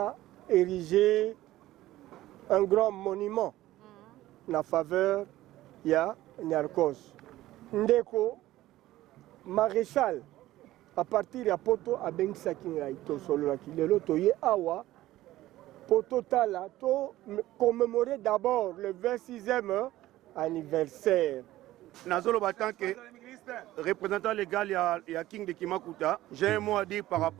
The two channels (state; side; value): quieter; left; 15.7 dB